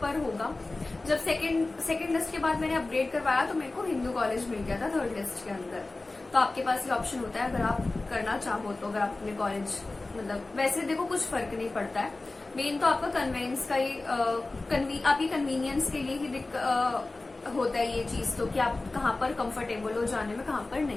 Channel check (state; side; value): quieter; right; 3.2 dB